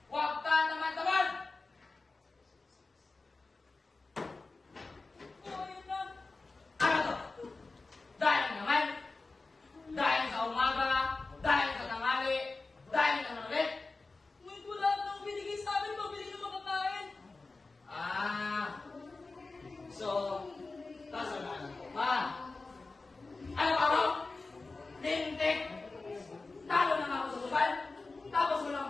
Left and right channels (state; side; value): quieter; right; 3.6 dB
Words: Huwag ka naman-taman! Ano to? Dahil naman? Dahil sa umaga? Dahil sa tanghali? Dahil sa manulit? Ngunit wala nang binigay sa amin, pabili ng makakain. So, kasalanan ko pa. Ano ka mo? Lintik! Talo na nga ako sa suban, tapos wala